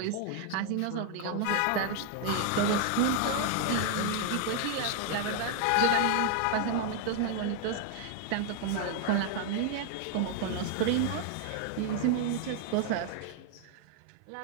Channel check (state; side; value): different; both; correlation 0.00